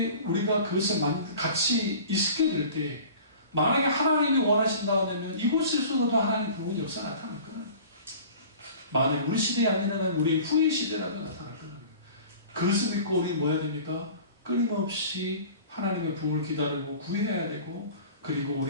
우리가 그것을 같이 있게 될 때, 만약에 하나님이 원하신다고 하면 이곳에서도 하나님 부분 역사 나타날 거예요. 만약 우리 시대에 아니면 우리의 후의 시대라도 나타날 거예요. 그것을 믿고 우리 뭐 해야 됩니까? 끊임없이 하나님의 부흥을 기다리고 구해야 되고, 그리고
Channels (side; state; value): both; inverted; correlation -0.43